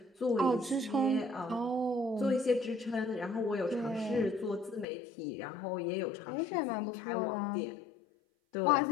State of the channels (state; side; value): drops out; right; at 4.9 s